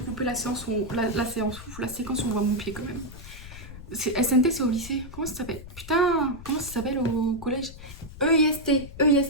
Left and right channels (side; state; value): left; noise; rumble, 14 dB below the sound